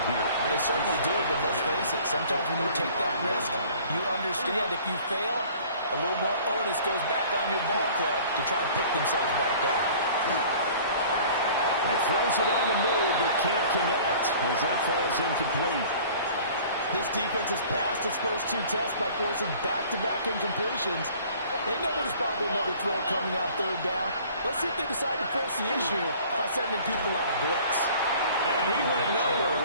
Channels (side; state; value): both; inverted; correlation -0.49